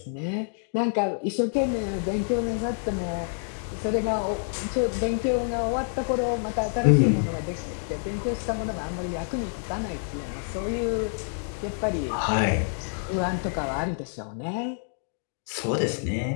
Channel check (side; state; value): right; silent; digital silence